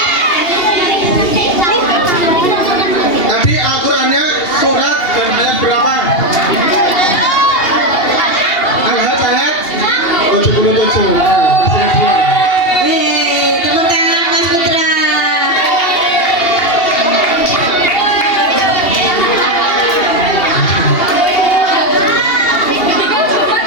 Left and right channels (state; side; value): late; right; 2.8 ms